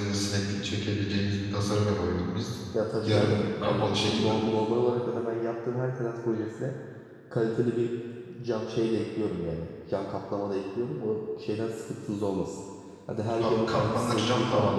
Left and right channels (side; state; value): both; identical; correlation 1.00